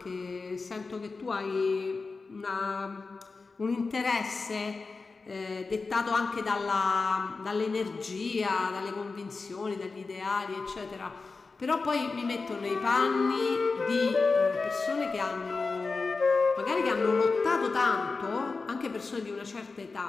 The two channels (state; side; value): quieter; right; 4.1 dB